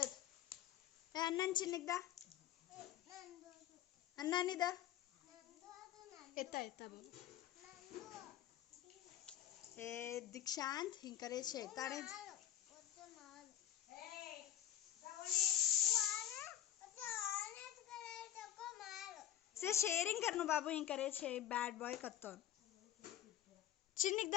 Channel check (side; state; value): right; quieter; 11.4 dB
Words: ए अन्नन चिन्निदा अन्नानिदा एता बाबू ए दीक्षांत हिंग करे छे ताणे से शेयरिंग करनो बाबू हिंग करे छे बैड बॉय कत्तो